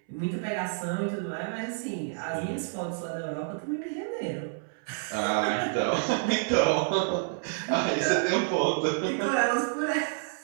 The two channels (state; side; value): silent; left; 59 dB below the other